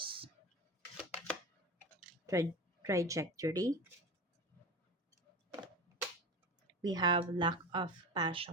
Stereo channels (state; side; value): normal; both; correlation 0.28